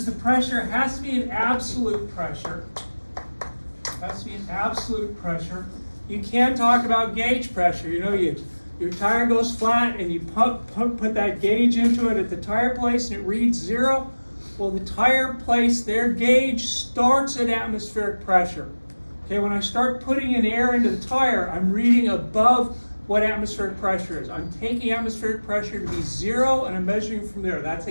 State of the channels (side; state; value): both; inverted; correlation -1.00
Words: the pressure. It has to be an absolute pressure. It has to be an absolute pressure. You can't talk about gauge pressure. You know, your tire goes flat and you put that gauge into it at the tire place and it reads 0. Well, the tire place, their gauge starts at atmospheric pressure. Okay, when I start putting in air into the tire, I'm reading above what atmospheric pressure is. I'm taking atmospheric pressure to be 0 and I'm measuring from there. That's